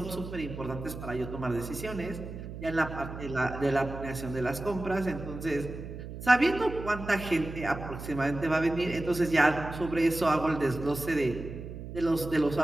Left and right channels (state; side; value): noise; right; hum, 10 dB below the sound